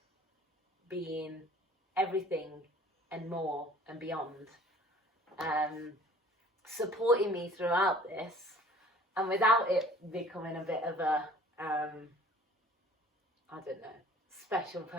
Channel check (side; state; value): both; normal; correlation 0.50